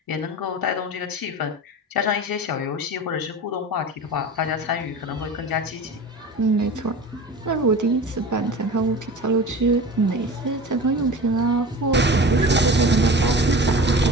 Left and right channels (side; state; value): both; normal; correlation 0.35